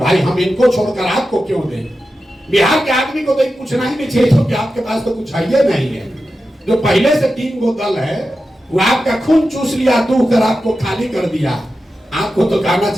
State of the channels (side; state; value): both; normal; correlation 0.91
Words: हम इनको छोड़कर आपको क्यों दें। बिहार के आदमी को तो पूछना ही नहीं चाहिए क्योंकि आपके पास तो कुछ है नहीं है। जो पहले से 3 गो दल है वो आपका खून चूस लिया, दूह कर आपको खाली कर दिया। आपको तो कहना